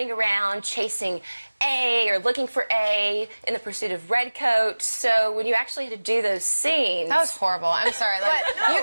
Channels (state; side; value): inverted; both; correlation -1.00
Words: around chasing A or looking for A in the pursuit of Redcoat. So when you actually had to do those scenes, That was horrible. I'm sorry. Like you